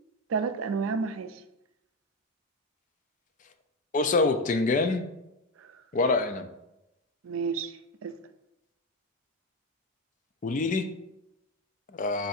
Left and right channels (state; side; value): normal; both; correlation 0.11